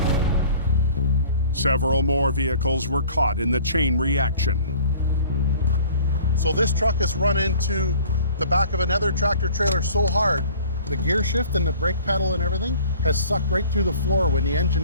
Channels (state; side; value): inverted; both; correlation -0.49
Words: Several more vehicles were caught in the chain reaction. So this truck has run into the back of another tractor trailer so hard, the gear shift and the brake pedal and everything has sucked right through the floor when the